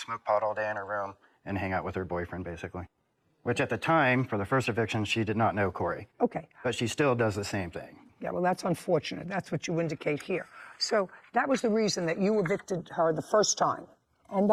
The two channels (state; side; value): identical; both; correlation 1.00